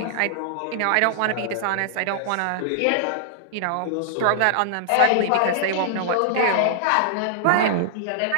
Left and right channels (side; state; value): both; different; correlation -0.01